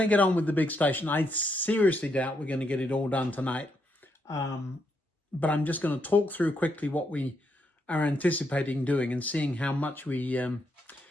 get on with the big station. I seriously doubt we're going to get it all done tonight. But I'm just going to talk through quickly what we are anticipating doing and seeing how much we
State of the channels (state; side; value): normal; both; correlation 0.78